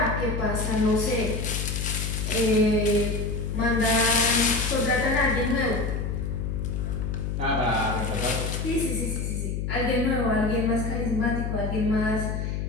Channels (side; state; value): left; noise; hum, 2 dB below the sound